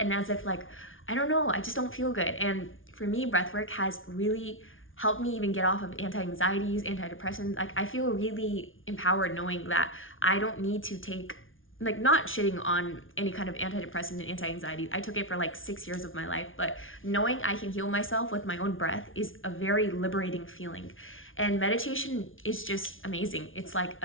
as if like, I don't know, I just don't feel good. And for me, breathwork has really helped me even get off of anti-anxieties, antidepressants. Like I feel really empowered knowing that I don't need to take, like not shitting on any kind of antidepressant and anti-anxiety. I took it for like 6 years of my life, but knowing I can heal myself with my own breath is a very liberating feeling. And meditation is just amazing. It's like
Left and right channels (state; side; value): late; right; 0.58 ms